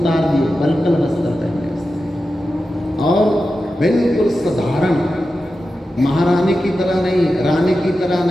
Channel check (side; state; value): both; normal; correlation 0.92